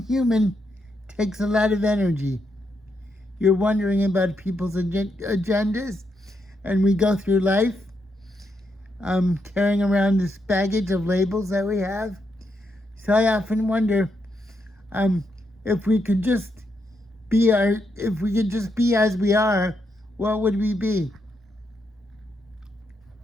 human takes a lot of energy. You're wondering about people's agendas, and we go through life carrying around this baggage of labels that we have. So I often wonder if we could just be as we are, what would we be?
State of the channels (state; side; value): normal; both; correlation 0.80